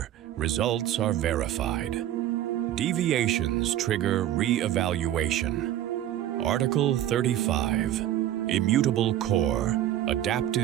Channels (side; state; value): left; quieter; 12.3 dB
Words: results are verified. Deviations trigger re-evaluation. Article 35, Immutable Core,